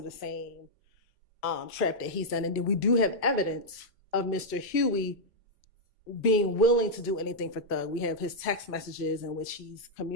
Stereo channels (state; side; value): normal; both; correlation -0.05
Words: the same trap that he's done. And then we do have evidence of Mr. Huey being willing to do anything for Thug. We have his text messages in which he's